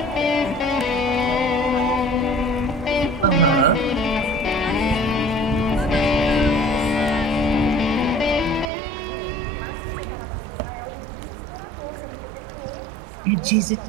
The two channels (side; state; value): left; drops out; at 8.7 s